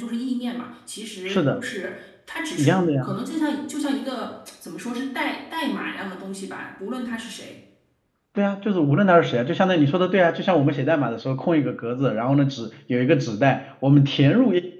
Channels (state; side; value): identical; both; correlation 1.00